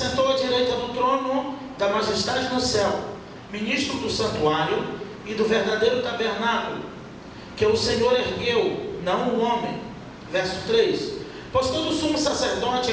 à direita do trono da majestade no céu, ministro do santuário e do verdadeiro tabernáculo que o Senhor ergueu, não o homem. Verso 3: pois todo sumo sacerdote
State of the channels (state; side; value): identical; both; correlation 1.00